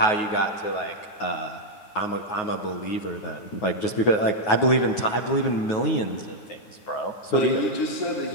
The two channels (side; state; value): right; late; 9.4 ms